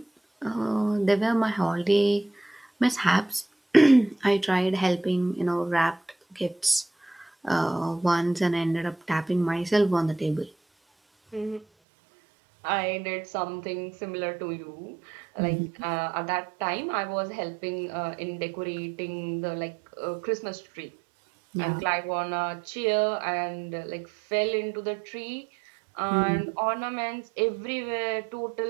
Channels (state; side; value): drops out; left; at 11.7 s